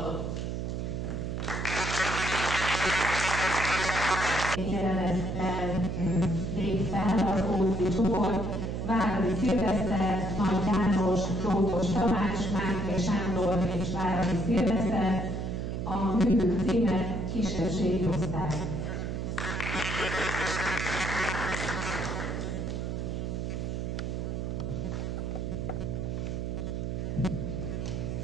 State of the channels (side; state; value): right; noise; hum, 3 dB below the sound